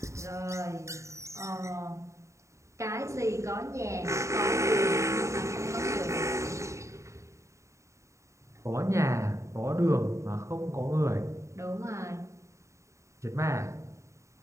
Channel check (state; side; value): late; left; 0.14 ms